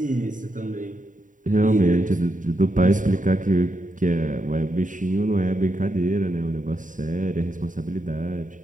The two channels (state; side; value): late; left; 0.38 ms